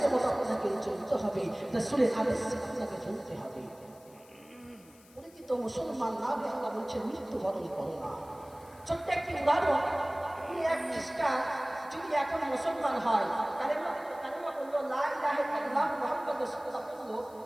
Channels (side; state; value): left; noise; hiss, 26 dB below the sound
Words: মতো আপনাকে চলতে হবে, রাসূলের আদেশে আপনাকে চলতে হবে। তো মুসলমান না হয়ে আল্লাহ বলছেন মৃত্যুবরণ করো না। ছোট্ট একটি উদাহরণ, এক খ্রিস্টান যদি এখন মুসলমান হয়, কালেমা বললো লা ইলাহা ইল্লাল্লাহ মুহাম্মাদুর রাসূলুল্লাহ বললো,